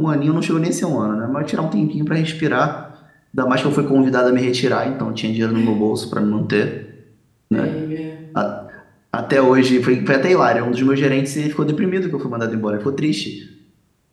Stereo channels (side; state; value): both; identical; correlation 1.00